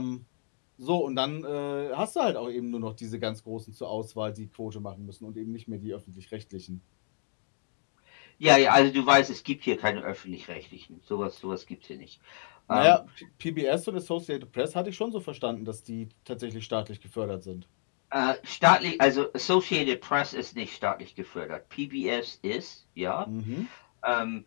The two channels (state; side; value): silent; right; digital silence